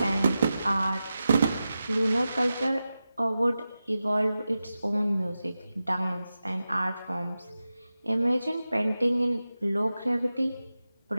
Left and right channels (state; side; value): inverted; both; correlation -0.93